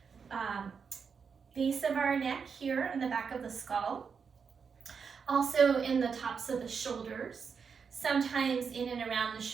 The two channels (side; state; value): left; quieter; 6.0 dB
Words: base of our neck here in the back of the skull, also in the tops of the shoulders, sometimes in and around the